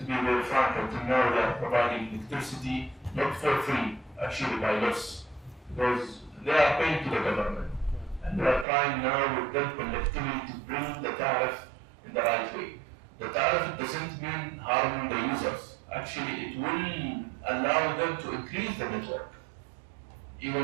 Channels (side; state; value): left; drops out; at 8.7 s